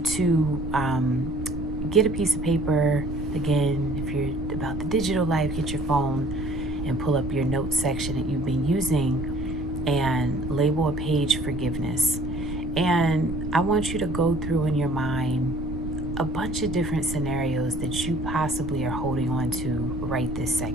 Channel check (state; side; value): noise; right; rumble, 8 dB below the sound